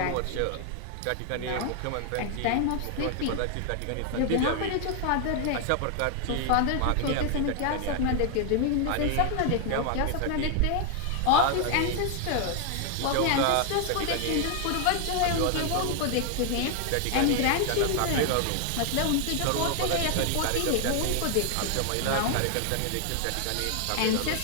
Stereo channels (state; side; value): different; both; correlation 0.00